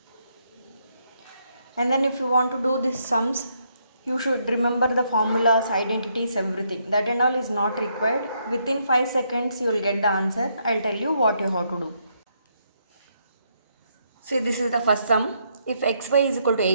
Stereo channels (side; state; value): both; inverted; correlation -0.75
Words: And then if you want to do these sums, you should remember the formulas, identities, everything. That and all is not required. Within 5 seconds you will get the answer. I'll tell you what you have to do. See, this is the first sum. If xy is equal to